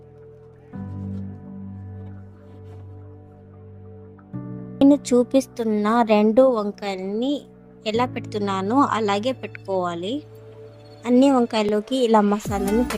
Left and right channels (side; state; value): both; identical; correlation 1.00